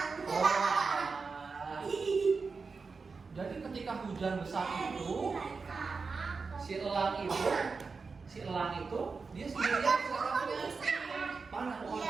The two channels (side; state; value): left; quieter; 4.7 dB